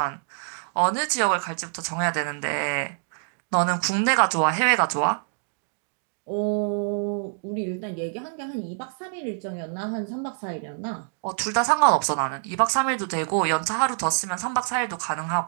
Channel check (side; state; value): left; silent; digital silence